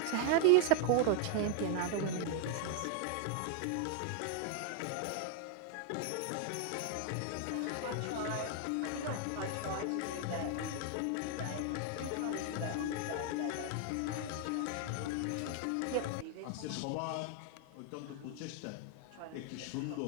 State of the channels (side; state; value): both; different; correlation 0.00